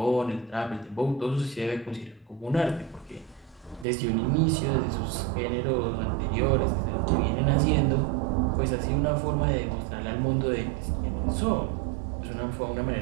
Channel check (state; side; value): drops out; left; at 3.9 s